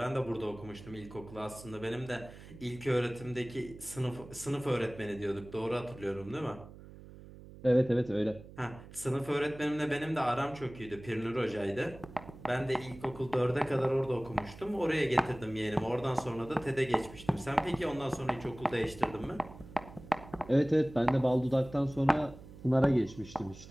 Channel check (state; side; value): noise; right; hum, 17 dB below the sound